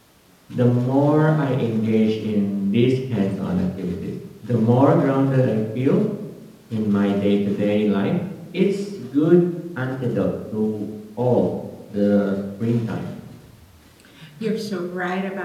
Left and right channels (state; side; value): identical; both; correlation 1.00